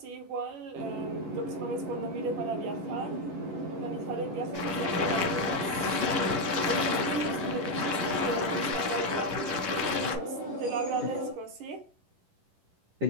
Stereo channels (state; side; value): late; left; 10 ms